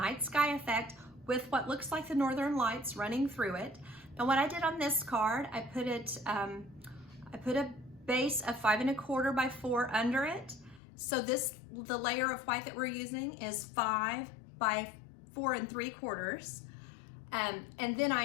sky effect with what looks like the Northern Lights running through it. Now what I did on this card, I put a base of 5 1/4 by 4 under it. So the layer of white that we're using is 5 by 4 3/4. And then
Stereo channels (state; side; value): drops out; right; at 10.8 s